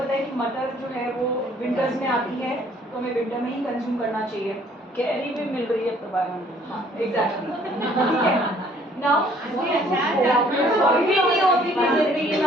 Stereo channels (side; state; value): both; normal; correlation 0.60